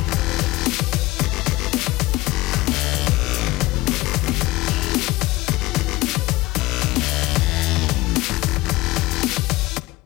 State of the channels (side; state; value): right; quieter; 19.8 dB